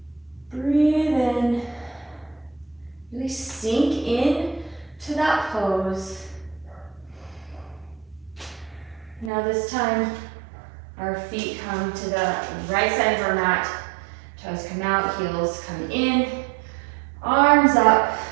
Breathe in. Really sink in to that pose. Now this time, our feet come to the right side of our mat. Toes come out, heels come in. Arms up,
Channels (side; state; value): left; drops out; at 9.3 s